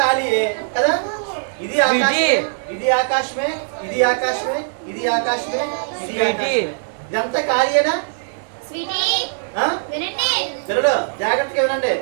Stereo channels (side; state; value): left; silent; digital silence